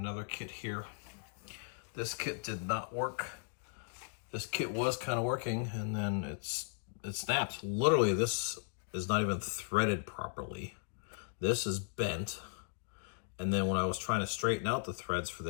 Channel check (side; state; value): right; silent; digital silence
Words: kit here. This kit did not work. This kit was kind of working and then it snaps. Literally, this is not even threaded properly. This is bent. And then when I was trying to straighten out the threads for